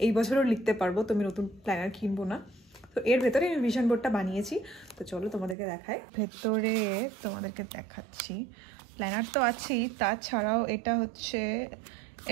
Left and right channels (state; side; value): drops out; left; at 5.6 s